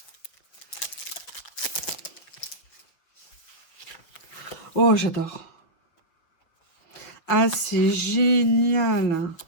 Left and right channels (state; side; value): late; right; 6.3 ms